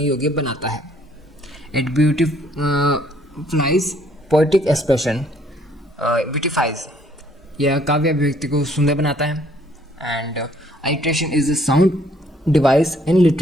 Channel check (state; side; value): normal; both; correlation 0.64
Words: योग्य बनाता है. It beautifies poetic expression, beautifies, यह काव्य अभिव्यक्ति को सुंदर बनाता है. And alliteration is a sound device in